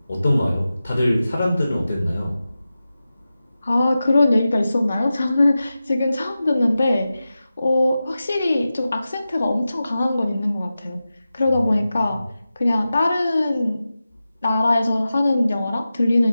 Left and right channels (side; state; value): both; inverted; correlation -0.94